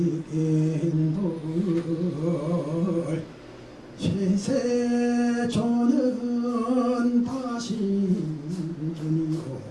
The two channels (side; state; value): both; identical; correlation 1.00